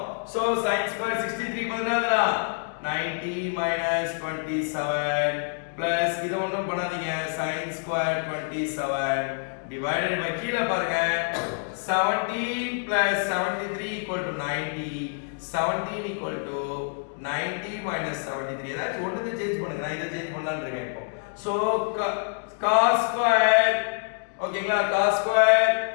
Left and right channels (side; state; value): right; silent; digital silence